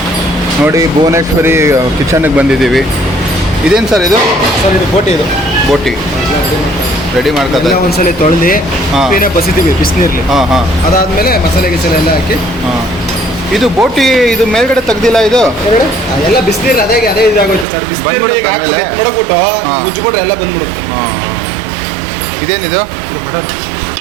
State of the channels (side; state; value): left; drops out; at 17.7 s